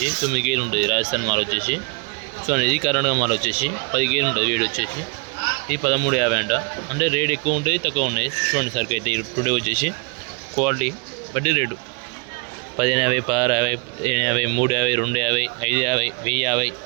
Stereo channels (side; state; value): left; quieter; 33.4 dB